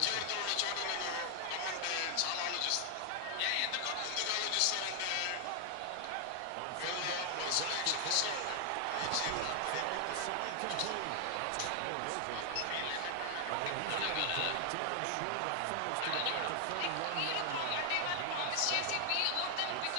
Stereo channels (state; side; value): different; both; correlation 0.00